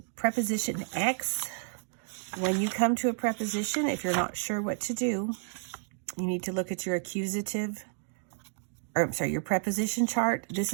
preposition X, when you come to a preposition, if you're not sure what to do, you need to look at your accusative, or I'm sorry, your preposition chart. This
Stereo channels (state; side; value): silent; left; digital silence